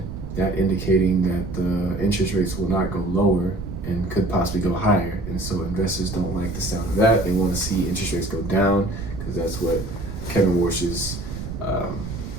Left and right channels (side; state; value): right; noise; rumble, 8 dB below the sound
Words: that indicating that the interest rates will not go lower and could possibly go higher. And so investors don't like the sound of that. They want to see interest rates go down because that's what Kevin Warsh's